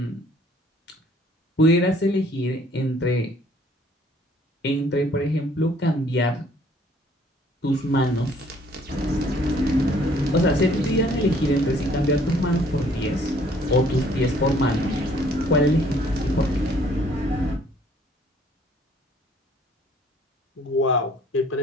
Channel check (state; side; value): normal; both; correlation 0.60